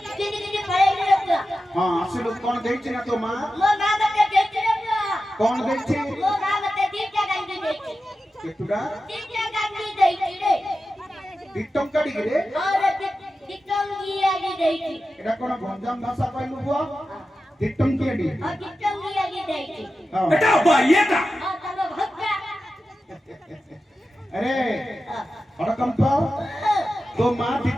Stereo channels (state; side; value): normal; both; correlation 0.92